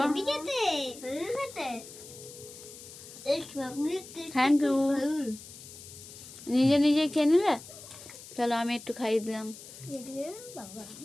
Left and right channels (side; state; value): left; noise; hiss, 16 dB below the sound